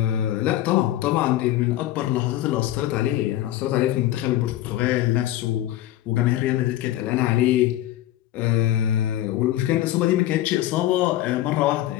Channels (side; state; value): right; quieter; 14.0 dB